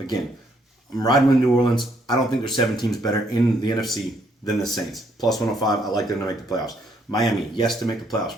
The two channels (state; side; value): normal; both; correlation 0.70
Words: I'm riding with New Orleans. I don't think there's 7 teams better in the NFC than the Saints. Plus 105. I like them to make the playoffs. Miami, yes, to make the